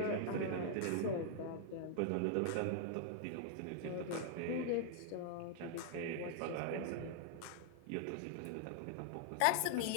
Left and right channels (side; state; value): both; different; correlation -0.01